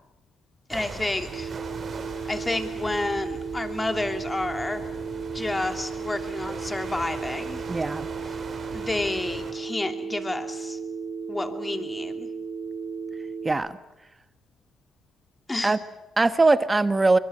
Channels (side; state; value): both; normal; correlation 0.93